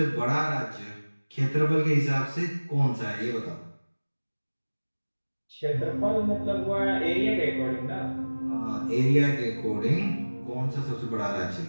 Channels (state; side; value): inverted; both; correlation -1.00